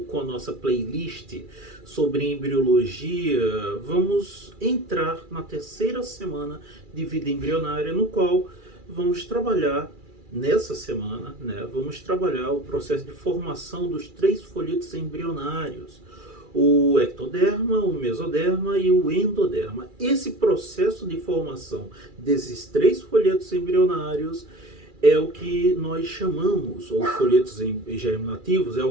com a nossa playlist sobre embriologia, vamos entrar na terceira semana de vida embrionária, no qual vamos trabalhar nessa semana, vamos trabalhar o processo de formação dos 3 folhetos embrionários, o ectoderma, o mesoderma e o endoderma. Esse processo de formação desses 3 folhetos embrionários é o que nós chamamos, ou folhetos germinativos, é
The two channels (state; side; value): late; left; 2.4 ms